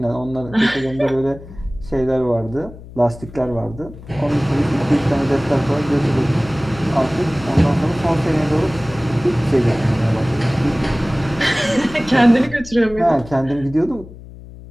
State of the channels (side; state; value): left; noise; hum, 17 dB below the sound